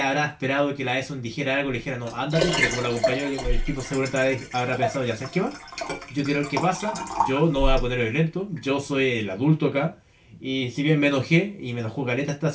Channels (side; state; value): both; identical; correlation 1.00